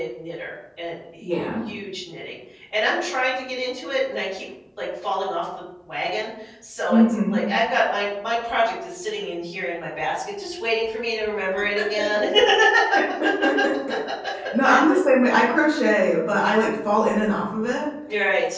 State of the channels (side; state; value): both; identical; correlation 1.00